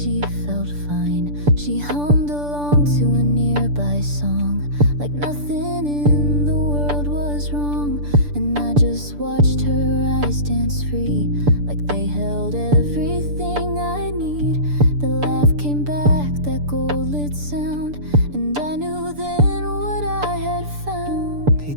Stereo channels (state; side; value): late; left; 6.8 ms